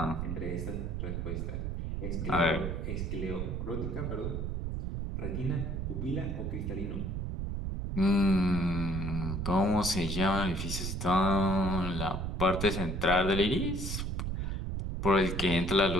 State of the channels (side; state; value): right; noise; rumble, 3 dB below the sound